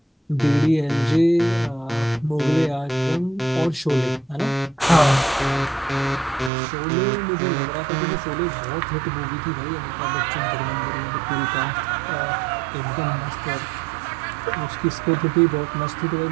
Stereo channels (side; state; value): left; drops out; at 6.5 s